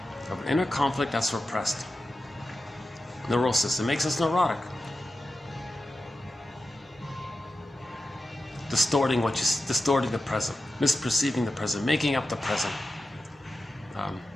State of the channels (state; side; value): normal; both; correlation 0.92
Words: of an inner conflict that's repressed. Neurosis. It makes us neurotic. Distorting the present, misperceiving the present, making up the present.